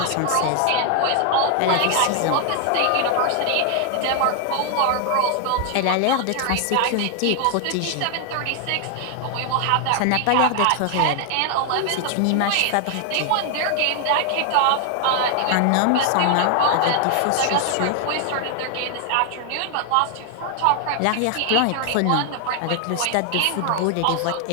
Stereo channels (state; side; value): different; both; correlation 0.00